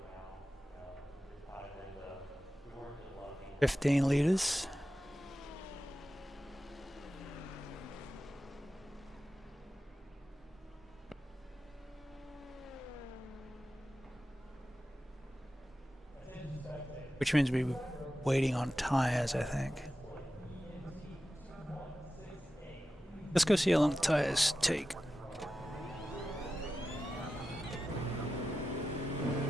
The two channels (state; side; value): normal; both; correlation 0.93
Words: 15 liters. Which means we're waiting on tires, I think. Let's go see how long the tires take.